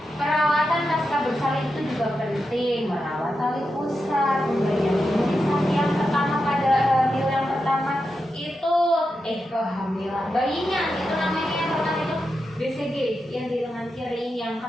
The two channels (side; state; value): both; normal; correlation 0.88